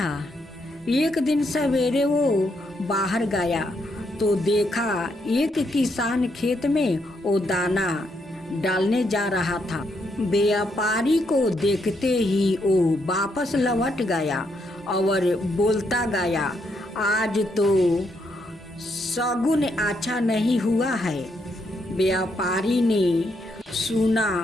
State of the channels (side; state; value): both; normal; correlation 0.77